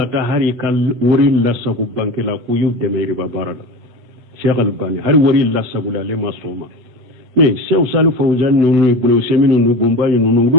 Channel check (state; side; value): late; left; 8.4 ms